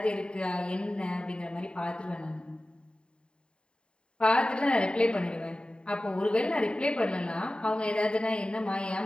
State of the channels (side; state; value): right; late; 0.051 ms